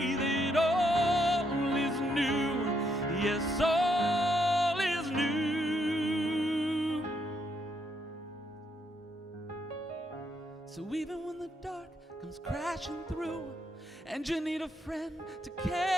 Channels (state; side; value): normal; both; correlation 0.76